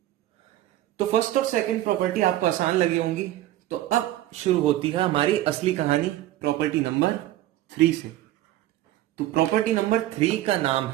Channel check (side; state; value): left; quieter; 14.4 dB